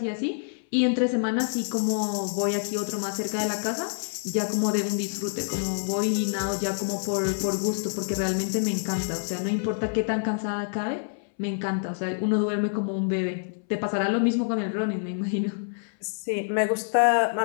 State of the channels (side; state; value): right; silent; 60 dB below the other